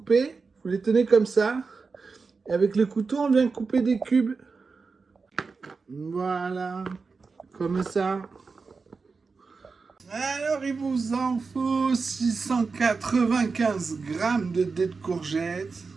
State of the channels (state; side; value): quieter; left; 4.6 dB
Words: Vous les tenez comme ça. Et avec le couteau, on vient couper des cubes. Voilà, comme ça. Alors il vous en faut 695 grammes de dés de courgettes.